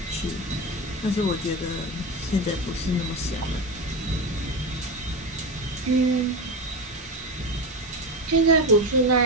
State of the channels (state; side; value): normal; both; correlation 0.19